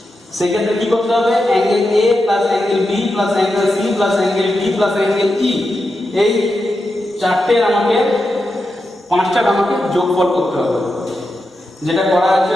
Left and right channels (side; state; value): both; normal; correlation 0.88